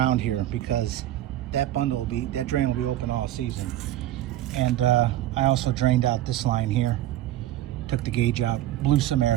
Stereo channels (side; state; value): left; quieter; 13.6 dB